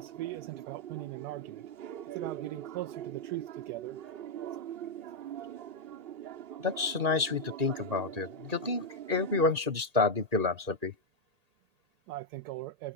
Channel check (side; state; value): left; late; 1.8 ms